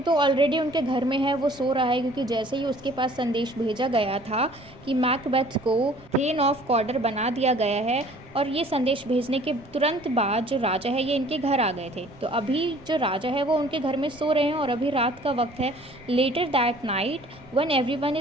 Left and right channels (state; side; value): noise; right; rumble, 24 dB below the sound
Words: तो ऑलरेडी उनके घर में है, वो सो रहा है, क्योंकि जैसे ही उसके पास संदेश भेजा गया था कि मैकबेथ को थेन ऑफ कॉर्डर बना दिया गया है, और ये संदेश भेजने के तुरंत बाद जो राजा है ये इनके घर आ गए थे। तो अभी जो राजा है वो उनके घर में सो रहे हैं, और अभी रात का वक्त है। Later that night when everyone